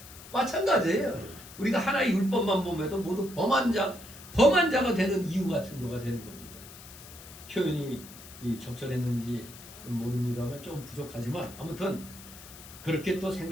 마찬가지예요. 우리가 하나의 율법만 보면도 모두 범한 자가 되는 이유 같은 거가 되는 겁니다. 표현이 적절했는지 모릅니다만 좀 부족하지만 아무튼 그렇게 또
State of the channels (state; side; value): noise; left; hiss, 17 dB below the sound